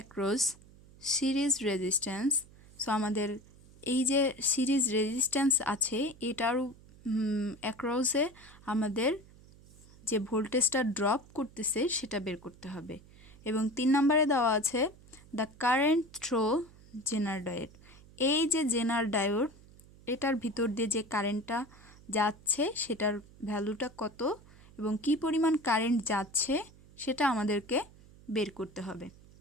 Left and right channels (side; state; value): right; noise; hum, 23 dB below the sound